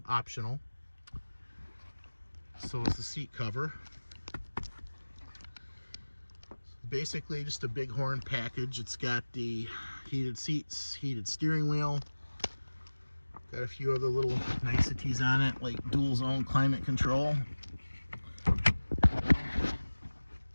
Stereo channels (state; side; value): inverted; both; correlation -1.00